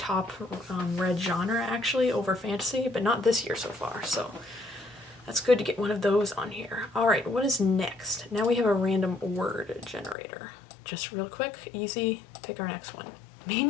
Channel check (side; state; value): right; drops out; at 10.2 s